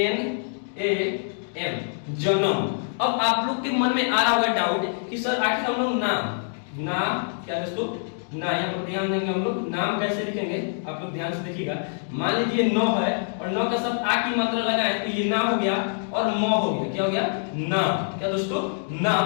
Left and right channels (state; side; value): silent; right; digital silence